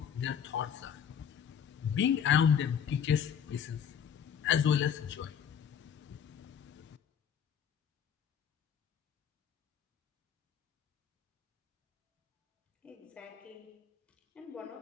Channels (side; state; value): right; quieter; 8.2 dB